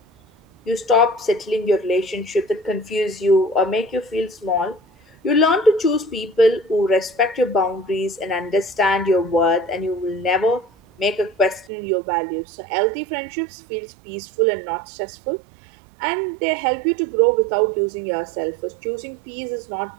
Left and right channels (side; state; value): left; drops out; at 11.7 s